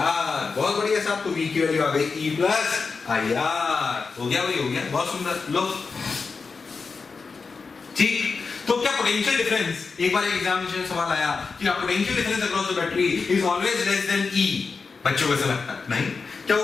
बहुत बढ़िया साहब, तो v की वैल्यू आ गई e प्लस आई आर। हो गया भाई, हो गया, बहुत सुंदर। लो ठीक, तो क्या पोटेंशियल डिफरेंस, एक बार एक एग्जामिनेशन में सवाल आया कि potential difference across the battery is always less than E, बच्चों को ऐसा लगता है नहीं, क्या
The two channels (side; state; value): right; quieter; 4.8 dB